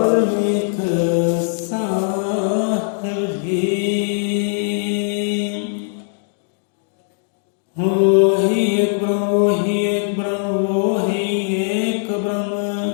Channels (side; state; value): right; silent; digital silence